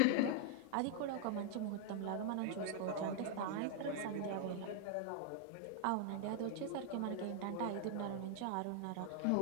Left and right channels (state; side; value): different; both; correlation 0.00